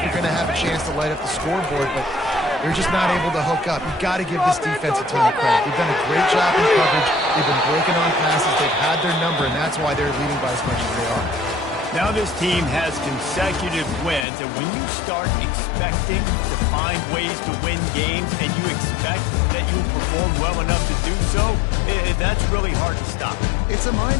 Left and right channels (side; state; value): right; drops out; at 14.2 s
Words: you're going to have a chance to light up the scoreboard, but they're just not able to hook up. You got to give this defense a ton of credit. They've done a great job in coverage. They've been breaking on passes. They've had their number, and that's why they're leading by as much as they are. Now this team has consecutive wins, and when you start expecting to find ways to win games and you expect that you'll perform well enough to do so, that's really hard to stop. It's a